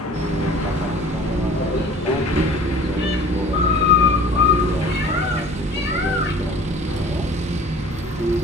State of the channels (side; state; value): both; normal; correlation 0.46